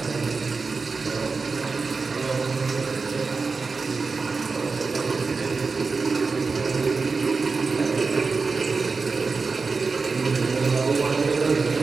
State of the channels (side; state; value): left; quieter; 4.4 dB